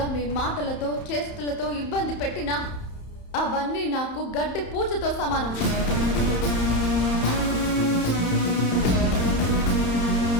మీ మాటలతో చేష్టలతో ఇబ్బంది పెట్టినా అవన్నీ నాకు గడ్డి పూజతో సమానం.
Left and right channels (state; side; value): late; right; 31 ms